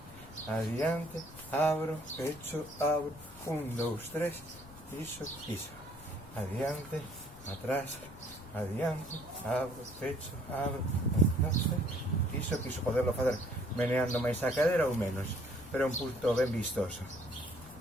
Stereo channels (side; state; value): left; noise; rumble, 18 dB below the sound